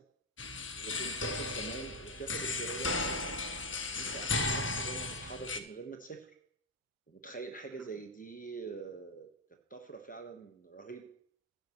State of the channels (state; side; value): normal; both; correlation 0.04